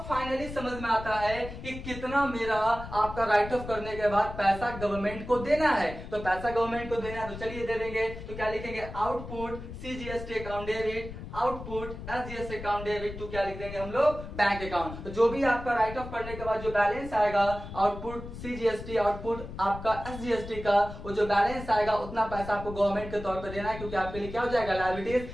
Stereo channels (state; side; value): noise; left; rumble, 11 dB below the sound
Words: फाइनली समझ में आता है कि कितना मेरा आपका राइट ऑफ करने के बाद पैसा गवर्नमेंट को देना है। तो पैसा गवर्नमेंट को देना है तो चलिए दे देंगे। तो क्या लिखेंगे, output CGST account debit, output SGST account debit to क्या लिख देंगे हम लोग, बैंक अकाउंट। तो जो भी आपका राइट ऑफ करने के बाद जो बैलेंस आएगा आउटपुट सीजीएसटी आउटपुट आपका एसजीएसटी का, वो जो बैलेंस आएगा उतना पैसा आपको गवर्नमेंट के तौर पर देना है, क्योंकि आपके लिए क्या हो जाएगा, लायबिलिटीज।